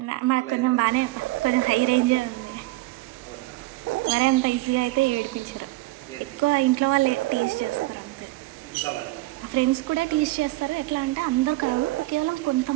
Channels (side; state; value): left; quieter; 19.5 dB